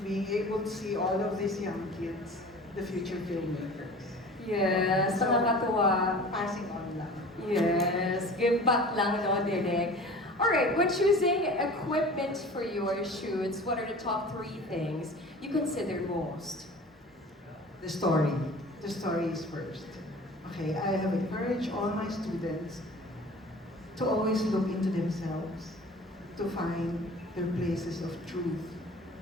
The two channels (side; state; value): both; normal; correlation 0.42